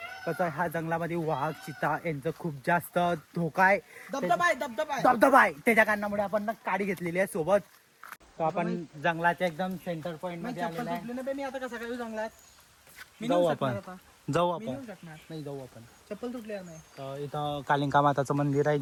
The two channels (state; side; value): identical; both; correlation 1.00